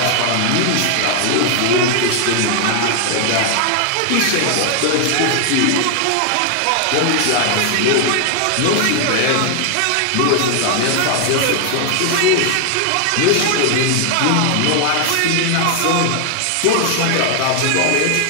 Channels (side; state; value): both; different; correlation 0.00